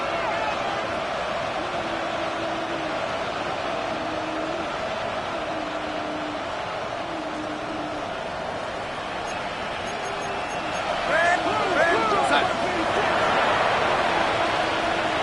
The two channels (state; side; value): identical; both; correlation 1.00